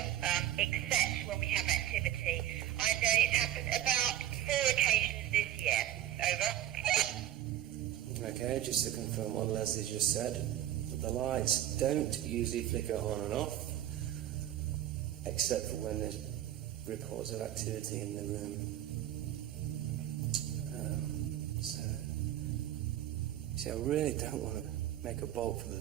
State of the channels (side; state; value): left; quieter; 12.4 dB